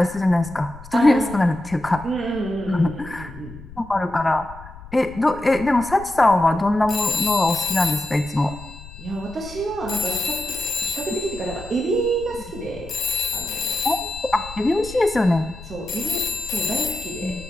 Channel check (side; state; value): left; noise; rumble, 16 dB below the sound